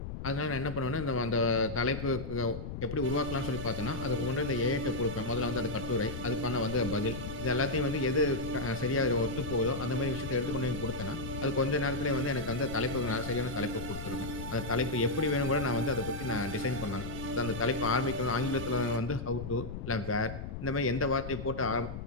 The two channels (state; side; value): noise; left; rumble, 8 dB below the sound